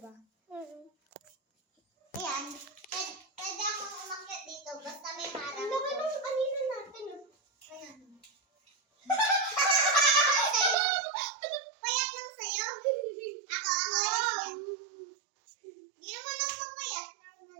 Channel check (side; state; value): left; drops out; at 10.8 s